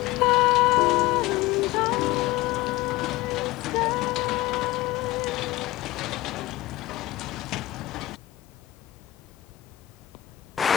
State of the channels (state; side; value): quieter; right; 17.3 dB